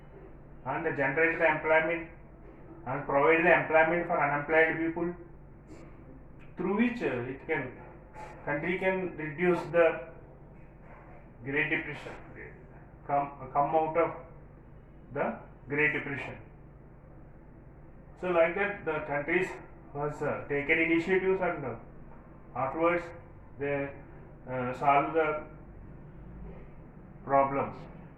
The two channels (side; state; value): both; identical; correlation 1.00